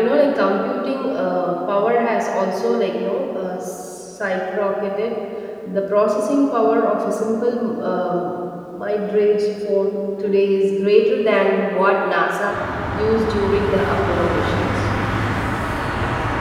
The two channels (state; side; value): identical; both; correlation 1.00